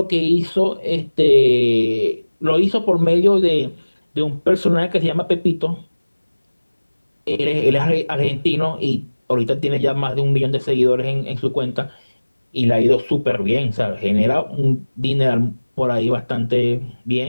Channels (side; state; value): both; inverted; correlation -1.00